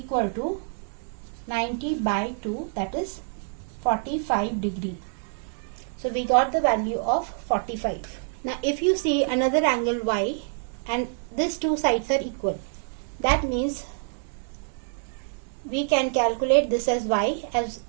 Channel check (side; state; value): left; silent; 59 dB below the other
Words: to 90 by 2, that is 45 degree. So we got the value of 45. Now if you see another angle y and these two sides are equal, that means we can calculate this as y, as